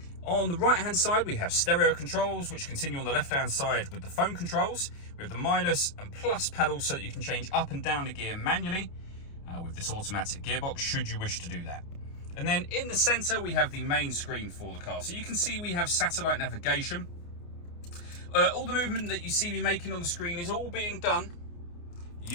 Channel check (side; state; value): right; late; 29 ms